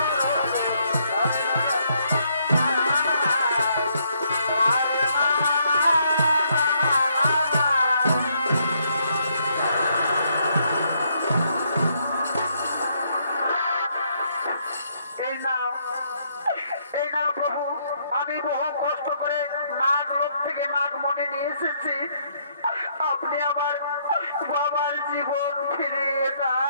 আমি বহু কষ্ট করে নাগলোক থেকে নাগমণি নিয়ে এসেছি, আপনি আমার বাবার জীবন ফিরিয়ে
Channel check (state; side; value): inverted; both; correlation -0.72